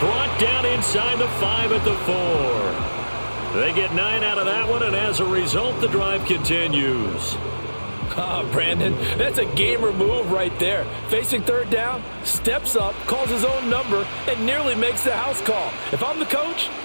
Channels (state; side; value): inverted; both; correlation -1.00